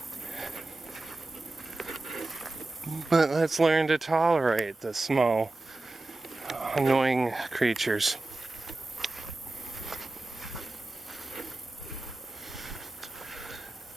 But let's learn to tolerate the small, annoying creatures.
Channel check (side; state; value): left; quieter; 3.0 dB